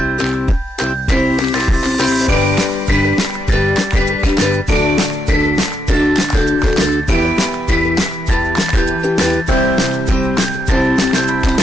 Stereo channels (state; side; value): normal; both; correlation 0.81